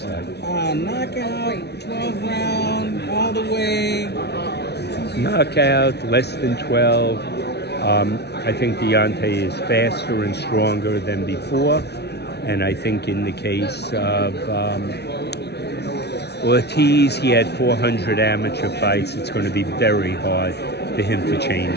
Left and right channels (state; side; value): late; right; 0.49 ms